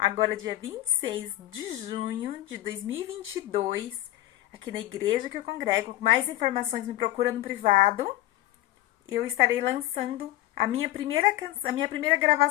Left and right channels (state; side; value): quieter; right; 15.9 dB